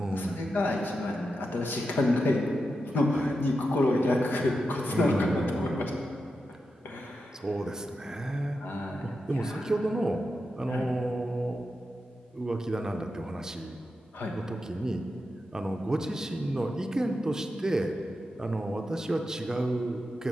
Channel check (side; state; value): both; normal; correlation 0.88